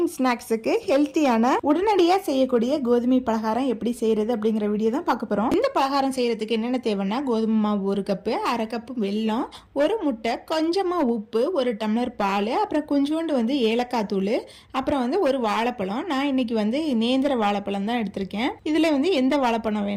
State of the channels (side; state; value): both; identical; correlation 1.00